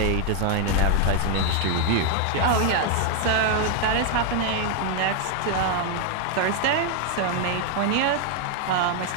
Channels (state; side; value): different; both; correlation 0.00